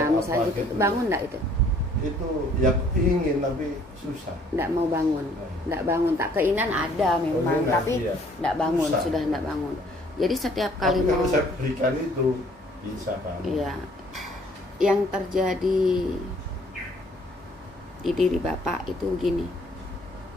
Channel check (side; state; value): both; normal; correlation 0.60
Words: misalnya apa gitu, gitu. bangun nggak itu? Itu ya ingin tapi susah. Nggak mau bangun, nggak bangun. Tak keinginan ada memang, Keinginan, tapi iya. nggak bangun, Susah. sudah nggak bangun. Jadi setiap Tapi kali kalau mau, saya berikan itu bisa bangun. iya, yang terjadi di diri Bapak itu gini,